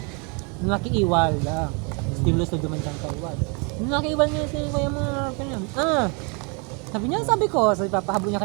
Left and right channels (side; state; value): left; quieter; 33.5 dB